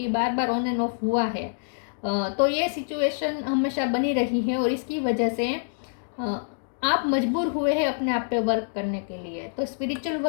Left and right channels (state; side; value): silent; right; digital silence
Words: बार बार ऑन एंड ऑफ हुआ है। तो ये सिचुएशन हमेशा बनी रही है और इसकी वजह से आप मजबूर हुए हैं अपने आप पे वर्क करने के लिए। तो स्पिरिचुअल